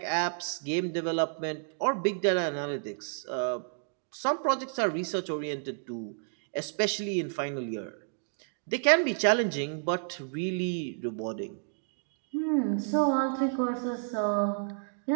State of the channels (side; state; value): left; silent; digital silence